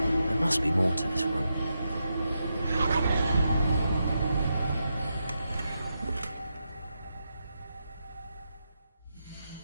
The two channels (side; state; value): both; inverted; correlation -0.86